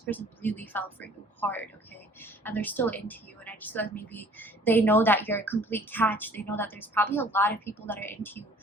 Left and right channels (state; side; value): normal; both; correlation 0.53